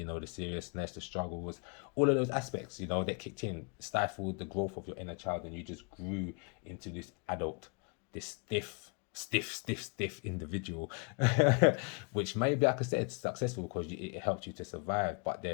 know, the seriousness, the struggles, all of those aspects, you know, that kicked in, stifled the growth of your inner child, and you just grew into this adult, this stiff individual, which maybe, like I said, successful because it helped you to survive. But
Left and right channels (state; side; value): quieter; right; 33.6 dB